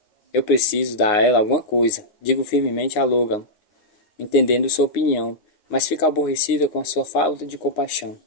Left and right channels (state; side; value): late; right; 9.6 ms